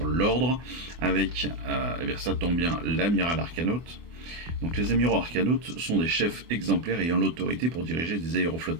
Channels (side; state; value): left; late; 24 ms